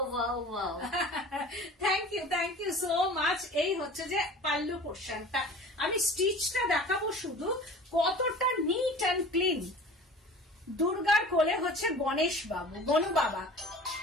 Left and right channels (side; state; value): both; normal; correlation 0.41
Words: থ্যাংক ইউ সো মাচ। এই হচ্ছে যে পাল্লু পোর্শনটা, আমি স্টিচটা দেখাবো শুধু, কতটা নিট অ্যান্ড ক্লিন। দুর্গার কোলে হচ্ছে গণেশ বাবু, গনু বাবা,